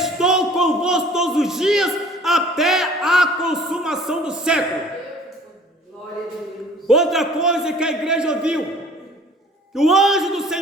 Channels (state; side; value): normal; both; correlation 0.51